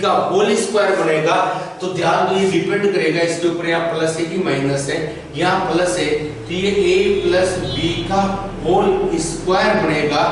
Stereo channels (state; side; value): identical; both; correlation 1.00